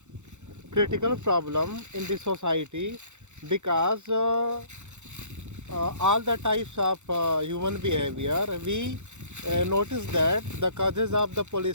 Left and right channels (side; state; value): left; late; 0.84 ms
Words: critical problem in the society because all the types of human behavior, we notice that the causes of the